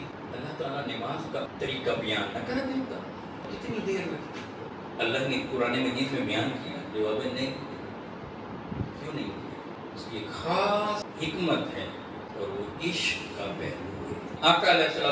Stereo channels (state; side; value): identical; both; correlation 1.00